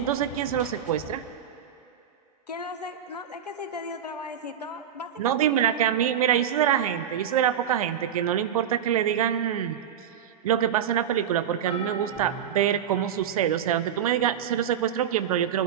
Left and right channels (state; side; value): quieter; left; 9.2 dB